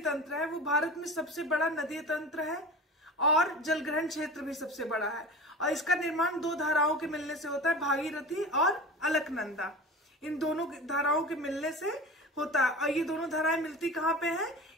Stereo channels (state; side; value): normal; both; correlation 0.34